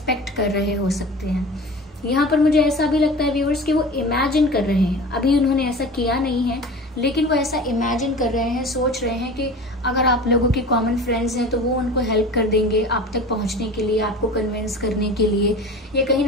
कर रहे हो सकते हैं। यहाँ पर मुझे ऐसा भी लगता है व्यूअर्स कि वो इमेजिन कर रहे हैं, अभी उन्होंने ऐसा किया नहीं है लेकिन वो ऐसा इमेजिन कर रहे हैं, सोच रहे हैं कि अगर आप लोगों के कॉमन फ्रेंड्स हैं तो वो उनको हेल्प कर देंगे आप तक पहुंचने के लिए, आपको कन्विंस करने के लिए, या कहीं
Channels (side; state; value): both; normal; correlation 0.36